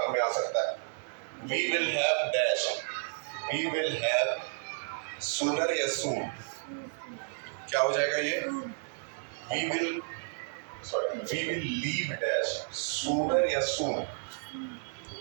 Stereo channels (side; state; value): left; silent; digital silence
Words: में आ सकता है। We will have dash, we will have sooner या सून, क्या हो जाएगा ये? We will leave dash, sooner या सून?